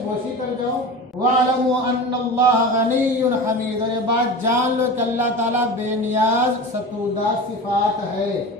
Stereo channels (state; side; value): normal; both; correlation 0.31